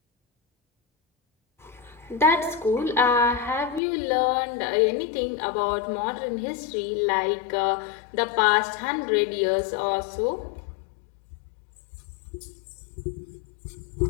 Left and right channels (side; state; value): right; drops out; at 3.8 s